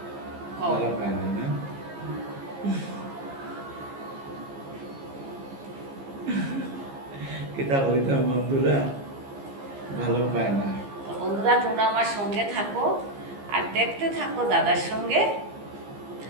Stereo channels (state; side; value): late; left; 15 ms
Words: ভালো পায় না না? কিতাব হইতাম বন্ধুরা, ভালো পায় না। তো বন্ধুরা তোমরা আমার সঙ্গে থাকো আর দেখতে থাকো দাদার সঙ্গে